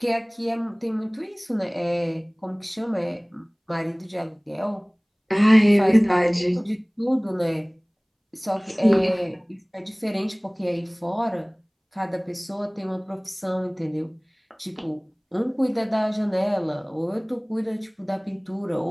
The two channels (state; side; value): identical; both; correlation 1.00